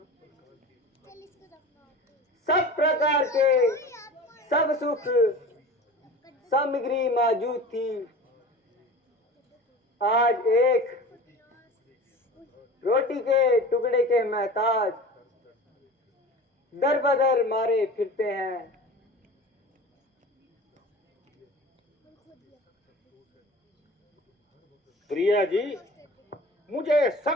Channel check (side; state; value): both; normal; correlation 0.37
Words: सब प्रकार के सब सुख सामग्री मौजूद थी। आज एक रोटी के टुकड़े के महताज दर बदर मारे फिरते हैं। प्रिया जी, मुझे